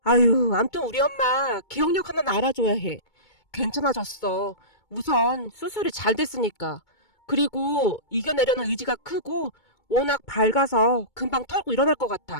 아유, 암튼 우리 엄마 기억력 하나는 알아줘야 해. 괜찮아졌어. 우선 수술이 잘 됐으니까. 그리고 이겨내려는 의지가 크고 워낙 밝아서 금방 털고 일어날 것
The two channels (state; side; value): late; right; 2.2 ms